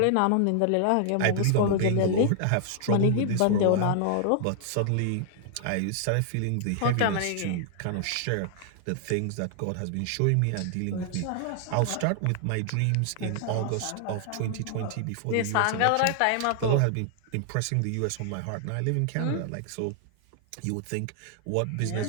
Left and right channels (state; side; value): different; both; correlation 0.00